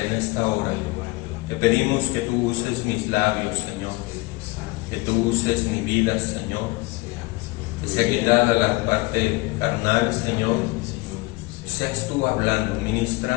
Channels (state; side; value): quieter; right; 23.4 dB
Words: en esta hora te pedimos que tú uses mis labios, Señor, que tú uses mi vida, Señor, que sea quitada la parte carnal, Señor, seas tú hablando,